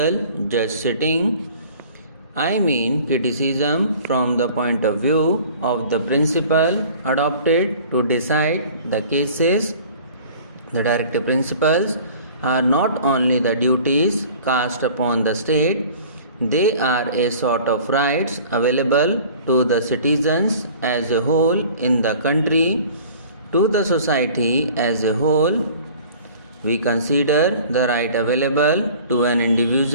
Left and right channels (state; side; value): inverted; both; correlation -0.47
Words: just sitting. I mean criticism from the point of view of the principle adopted to decide the cases. The directive principles are not only the duties cast upon the state, they are a sort of rights available to the citizens as a whole in the country, to the society as a whole. We consider the right available to an